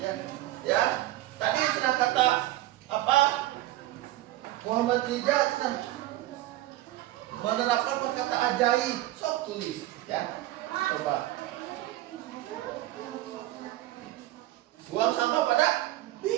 Ya. Tadi sudah kata apa? Muhammad Rijal menerapkan perkata ajaib. Sok tulis, ya. Coba. Buang sampah pada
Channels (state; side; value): quieter; left; 16.0 dB